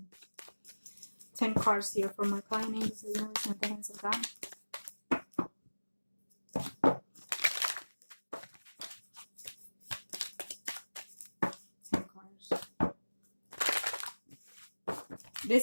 10 cards here for my client. Angels in the hands of God. 10 cards.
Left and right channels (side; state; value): both; inverted; correlation -1.00